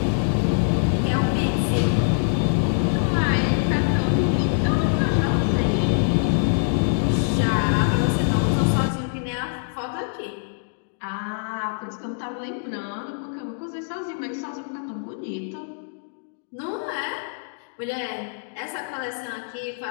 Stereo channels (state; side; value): silent; right; digital silence